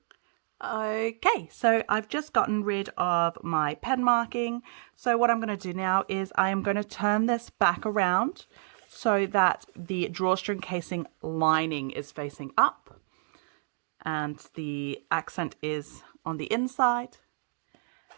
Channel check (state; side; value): silent; left; digital silence